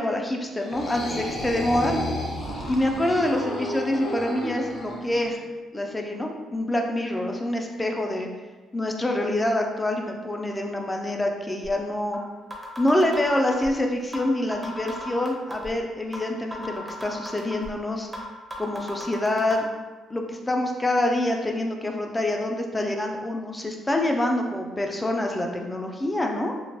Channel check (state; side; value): normal; both; correlation 0.85